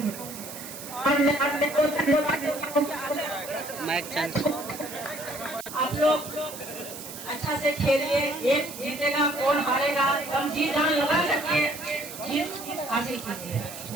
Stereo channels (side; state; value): right; noise; hiss, 12 dB below the sound